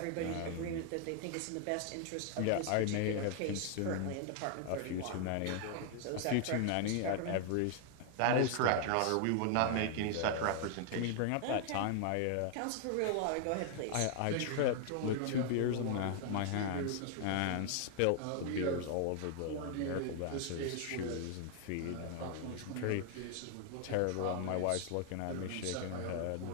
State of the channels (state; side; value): different; both; correlation 0.00